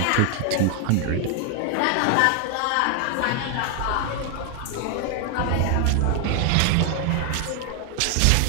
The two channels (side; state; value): both; different; correlation 0.00